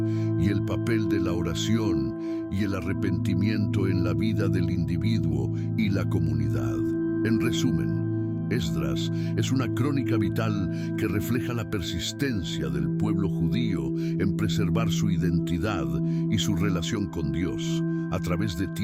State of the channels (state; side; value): identical; both; correlation 1.00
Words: y el papel de la oración y el arrepentimiento en la vida del individuo y la comunidad. En resumen, Esdras es una crónica vital que refleja la persistencia del pueblo judío en preservar su identidad y su relación con Dios a través de